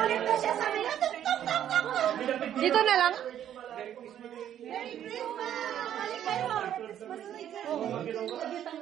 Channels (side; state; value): left; quieter; 10.5 dB